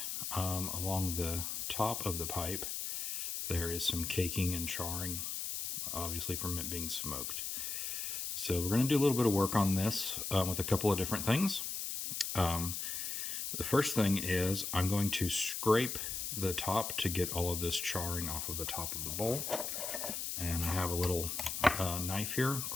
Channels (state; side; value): noise; left; hiss, 3 dB below the sound